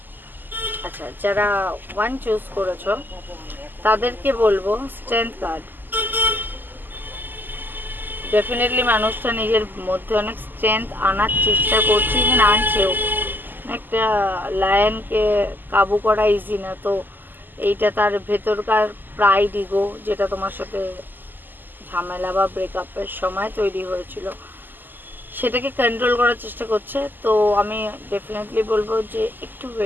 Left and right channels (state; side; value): late; left; 0.089 ms